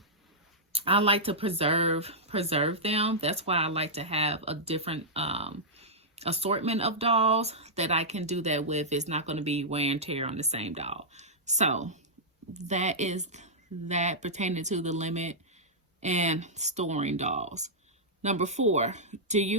I like to preserve them. That's why I like to have a different assortment of dolls that I can do that with. It's not going to be wear and tear on the same doll. So that is that pertaining to the limit and storing dolls. Number 4, do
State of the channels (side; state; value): both; normal; correlation -0.10